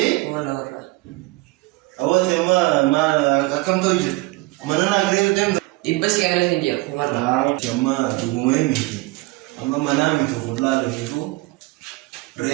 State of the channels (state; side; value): quieter; left; 21.6 dB